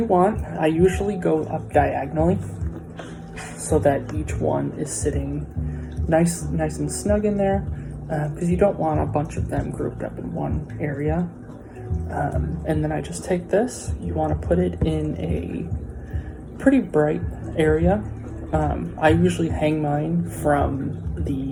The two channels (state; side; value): identical; both; correlation 1.00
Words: want, I usually go up diagonally so that each one is sitting nice and snug in there, because you don't want a bunch of them grouped up in one area. And then I just take this, you want to put it in a pretty bright area. I usually hang mine from